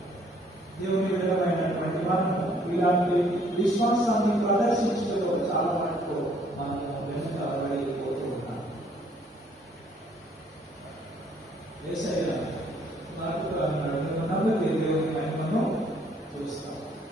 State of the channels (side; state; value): both; normal; correlation 0.63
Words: దేవుని విధమైనటువంటి మనం ఇలాంటి విశ్వాసాన్ని ప్రదర్శించడంలో చాలా మటుకు మనం వెనుకబడిపోతూ ఉన్నాం. యేసయ్య నమ్మితే దేవుని మహిమను చూస్తాం.